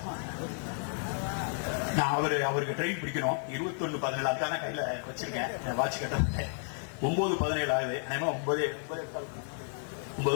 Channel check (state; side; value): silent; right; 56 dB below the other